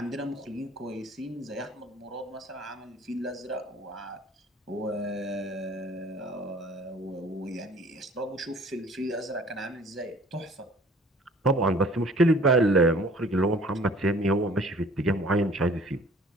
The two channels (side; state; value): both; normal; correlation 0.52